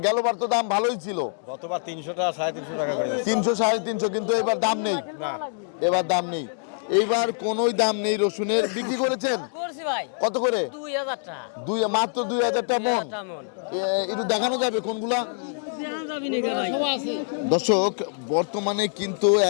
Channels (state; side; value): silent; right; digital silence